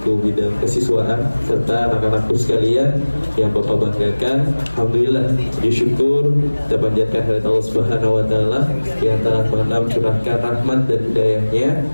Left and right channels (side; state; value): both; inverted; correlation -1.00